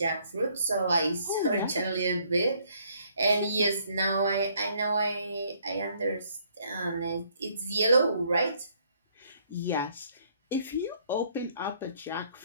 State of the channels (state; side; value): inverted; both; correlation -0.66